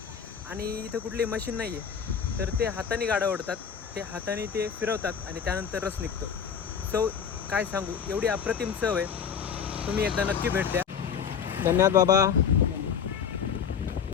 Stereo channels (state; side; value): quieter; right; 7.2 dB